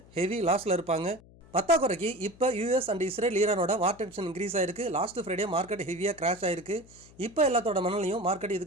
ஹெவி லாஸில் இருப்பாங்க. பத்தாக்குறைக்கு இப்போ யூஎஸ் அண்ட் இஸ்ரேல் ஈரானோட வார் டென்ஷன் இன்க்ரீஸ் ஆயிருக்கு. லாஸ்ட் ஃப்ரைடே மார்க்கெட் ஹெவியாக கிராஷ் ஆயிருக்கு. இப்போ எல்லாத்தோட மனநிலையும் மார்க்கெட்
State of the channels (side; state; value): left; noise; hum, 24 dB below the sound